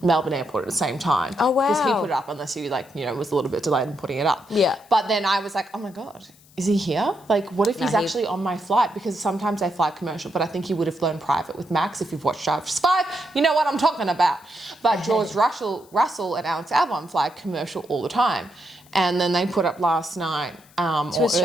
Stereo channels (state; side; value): noise; left; hiss, 27 dB below the sound